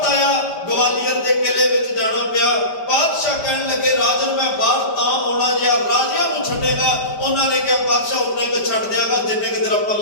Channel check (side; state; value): right; late; 5.1 ms